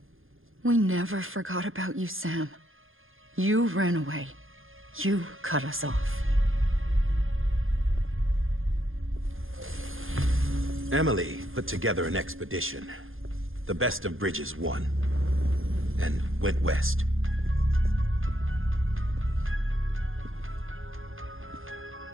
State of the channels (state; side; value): late; left; 0.60 ms